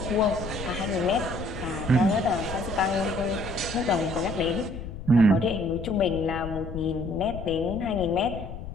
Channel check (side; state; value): left; noise; rumble, 10 dB below the sound